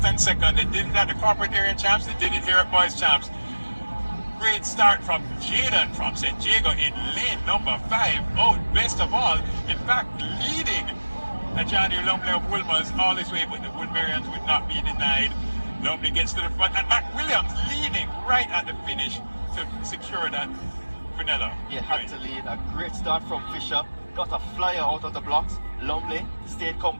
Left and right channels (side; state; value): both; inverted; correlation -1.00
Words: and second. They did it at the corporate area champs, they did it here at boys champs. Great start from Jaden from St. Jago in lane number 5. Oh, best of all, in fact, leading Johnny Lumley of Wolmer's all this way, but the Woodburyans would not be denied. Lumley gets to the front, and McWilliams leading right at the finish to secure that Quinella. He had to lead. A great start from Fisher. Got a flyer out of the blocks. Lumley stayed